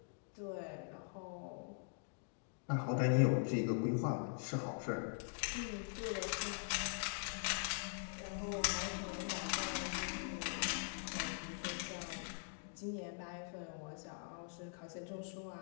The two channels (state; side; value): silent; right; digital silence